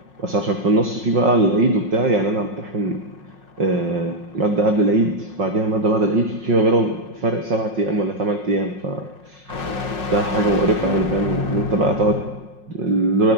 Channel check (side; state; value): left; late; 5.5 ms